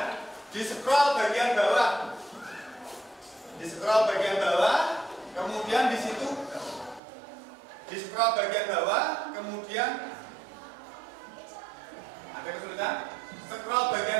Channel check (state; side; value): drops out; left; at 7.0 s